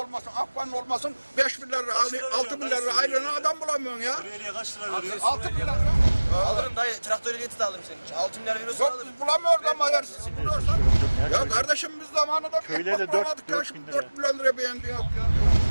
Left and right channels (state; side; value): inverted; both; correlation -1.00